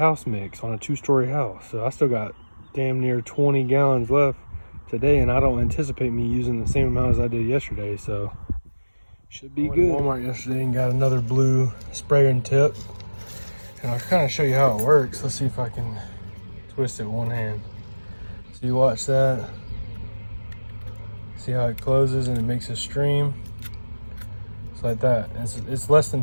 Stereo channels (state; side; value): inverted; both; correlation -1.00